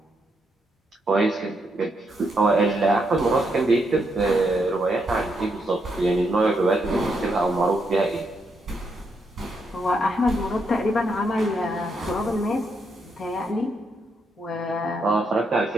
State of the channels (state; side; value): normal; both; correlation 0.79